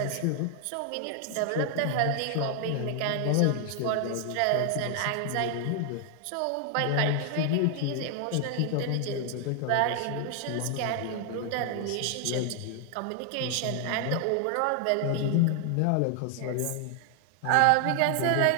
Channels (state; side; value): different; both; correlation 0.00